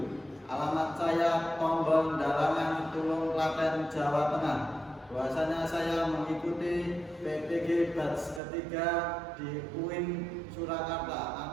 Alamat saya Tombol Dalangan, Tulung Klaten, Jawa Tengah. Bahwasanya saya mengikuti PPG batch ketiga di UIN Surakarta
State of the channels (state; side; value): drops out; left; at 8.4 s